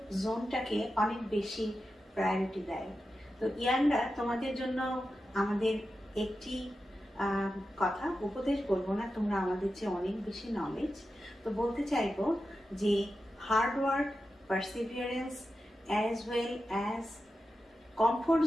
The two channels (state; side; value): normal; both; correlation 0.91